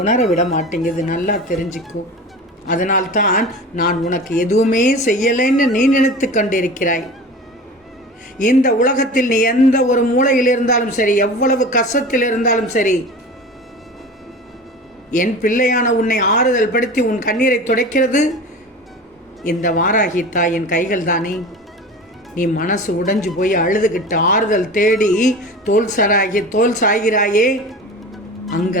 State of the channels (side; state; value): both; normal; correlation 0.34